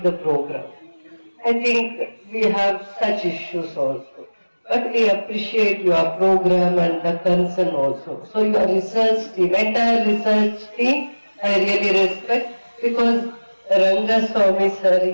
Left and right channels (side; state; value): both; inverted; correlation -1.00